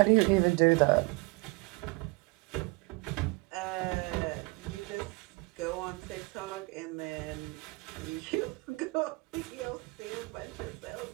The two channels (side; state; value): left; quieter; 26.5 dB